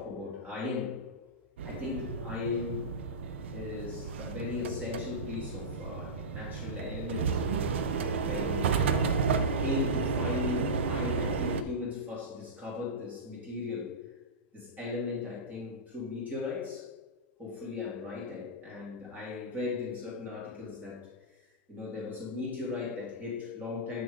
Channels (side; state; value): both; normal; correlation -0.16